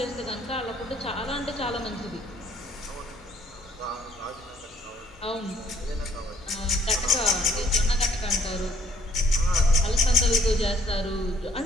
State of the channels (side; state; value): both; normal; correlation 0.62